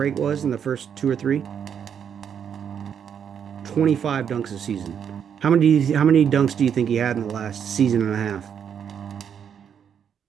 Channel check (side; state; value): left; quieter; 8.0 dB